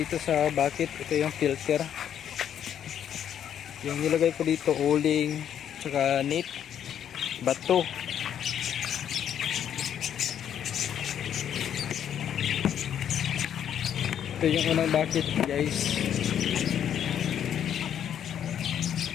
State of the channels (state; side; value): quieter; right; 9.5 dB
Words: sa bucket. Ito yung filter. Yung nilagay ko dito, uling, tsaka net, bato. Ito yung unang bucket guys.